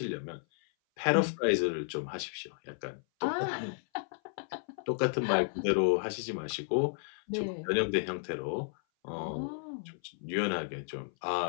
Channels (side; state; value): right; silent; 56 dB below the other